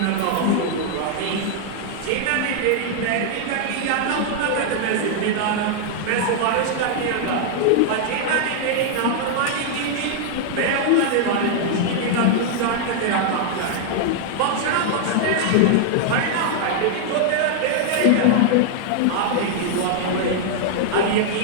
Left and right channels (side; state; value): both; different; correlation -0.01